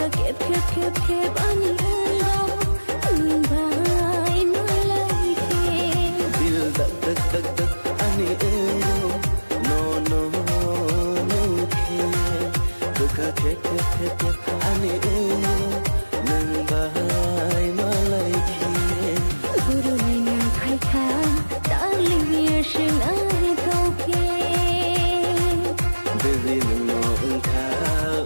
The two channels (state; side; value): inverted; both; correlation -1.00